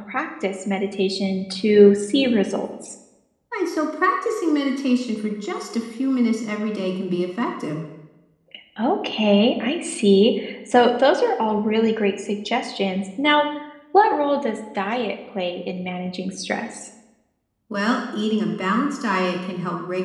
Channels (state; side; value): identical; both; correlation 1.00